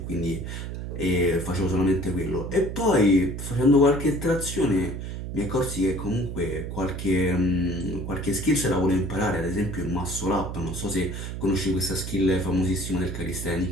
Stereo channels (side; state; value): right; noise; hum, 6 dB below the sound